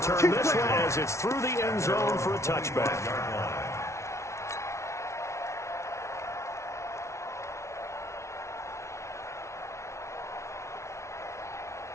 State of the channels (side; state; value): right; late; 0.13 ms